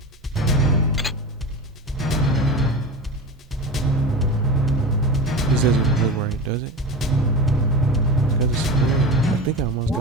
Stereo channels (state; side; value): normal; both; correlation 0.27